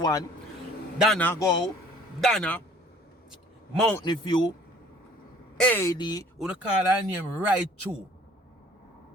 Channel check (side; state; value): both; normal; correlation 0.54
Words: Donna go, Donna, Mountain View, AD, you call her name right through.